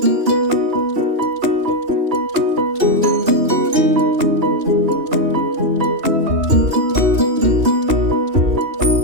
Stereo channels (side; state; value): left; late; 2.9 ms